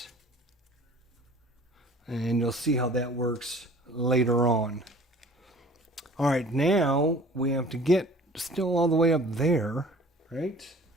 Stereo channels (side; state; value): both; normal; correlation 0.48